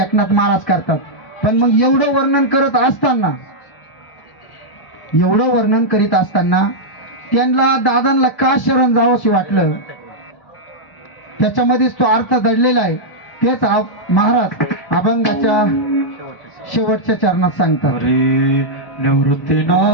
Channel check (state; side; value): late; right; 1.0 ms